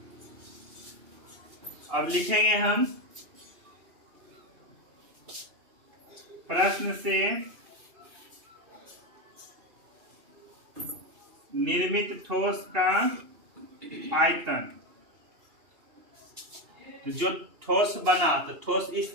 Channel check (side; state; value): left; late; 2.8 ms